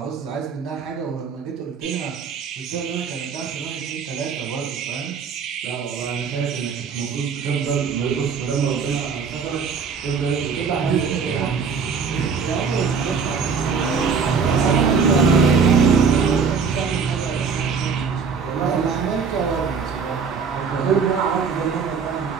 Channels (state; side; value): quieter; left; 5.8 dB